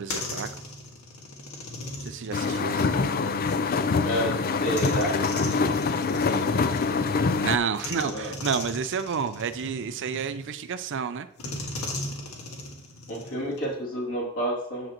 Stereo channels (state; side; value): normal; both; correlation 0.22